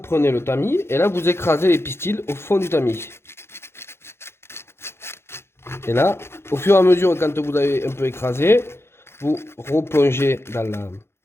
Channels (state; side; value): late; right; 0.12 ms